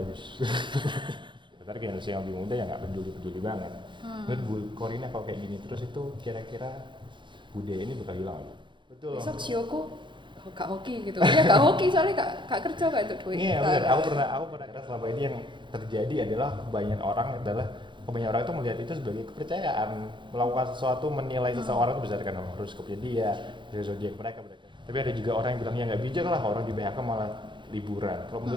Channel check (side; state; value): left; late; 0.23 ms